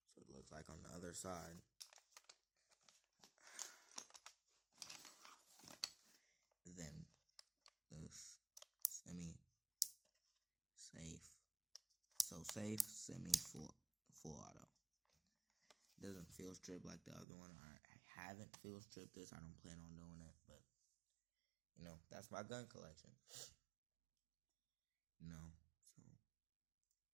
so it looks like on the other side. Then this semi-safe. So safe, semi-full auto. It doesn't field strip like the other one. I haven't field stripped this. I don't plan on doing it, but you know, that's my gun collection. You know, so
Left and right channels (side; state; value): left; drops out; at 17.2 s